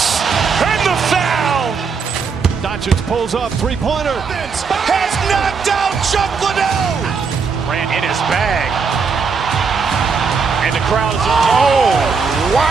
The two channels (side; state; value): left; quieter; 5.4 dB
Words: and the foul. Doncic pulls up, three-pointer. Has knocked out Chuck Liddell. Ran in his bag. And the crowd is, oh,